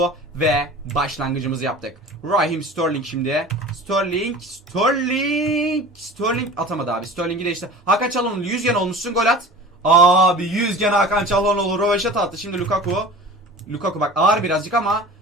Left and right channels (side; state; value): both; normal; correlation 0.39